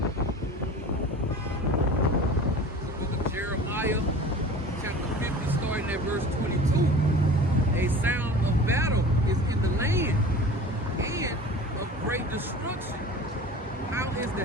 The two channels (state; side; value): normal; both; correlation 0.39